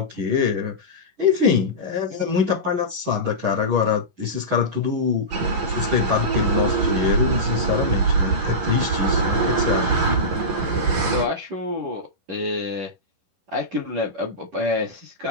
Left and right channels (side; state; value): left; late; 11 ms